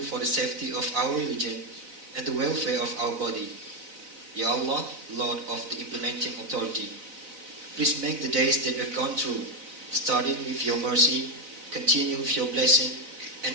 for the safety of our religion and the welfare of our body. Ya Allah, Lord of the implementing authority, please make the days that we've gone through, started with your mercy, continue with your blessing, and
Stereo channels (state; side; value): late; left; 4.0 ms